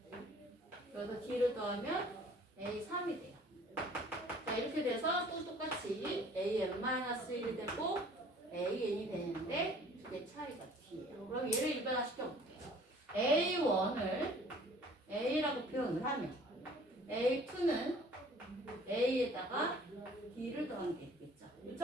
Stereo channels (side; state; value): both; normal; correlation 0.52